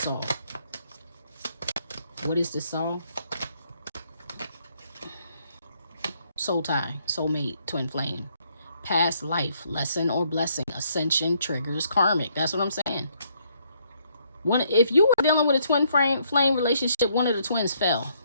Saul? What is this Saul? Soul tie, soulmate, twin flame. Past life, lesson or blessing, ascension triggers karmic. That's what I'm saying. If you were dealing with a twin flame relationship, one of the twins fell.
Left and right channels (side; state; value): both; inverted; correlation -0.70